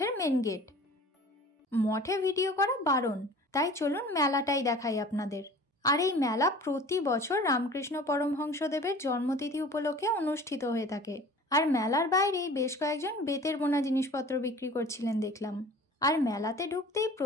মেন গেট, মঠে ভিডিও করা বারণ, তাই চলুন মেলাটাই দেখাই আপনাদের। আর এই মেলা প্রতি বছর রামকৃষ্ণ পরমহংসদেবের জন্মতিথি উপলক্ষে অনুষ্ঠিত হয়ে থাকে। আর মেলার বাইরেই বেশ কয়েকজন বেতের বোনা জিনিসপত্র বিক্রি করছিলেন দেখলাম। আর মেলাতে ঢুকতেই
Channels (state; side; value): normal; both; correlation 0.44